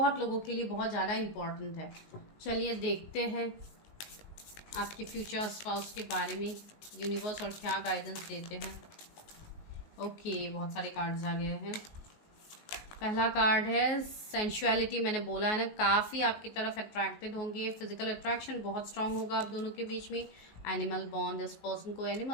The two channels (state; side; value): late; right; 19 ms